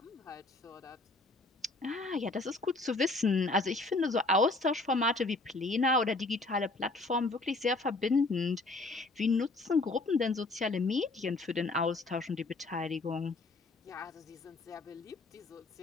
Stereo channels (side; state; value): right; quieter; 3.2 dB